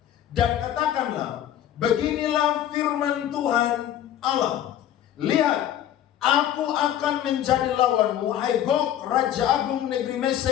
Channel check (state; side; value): quieter; right; 11.2 dB